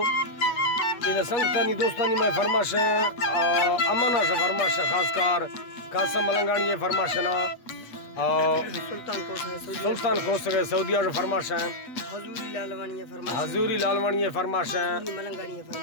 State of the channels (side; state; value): right; late; 8.3 ms